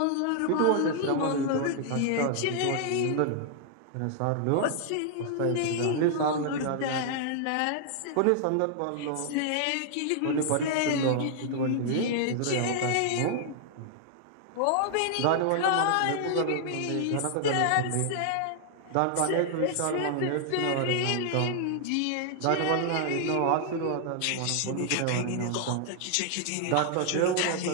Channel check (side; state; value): both; different; correlation 0.00